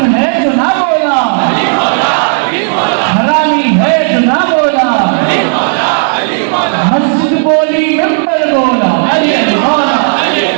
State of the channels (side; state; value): left; silent; 74 dB below the other